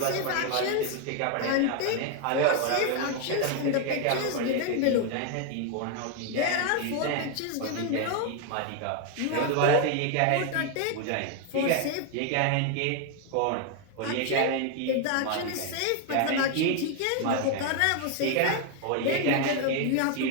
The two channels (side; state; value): both; different; correlation 0.01